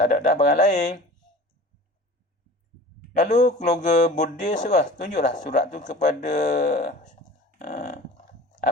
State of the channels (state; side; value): normal; both; correlation 0.40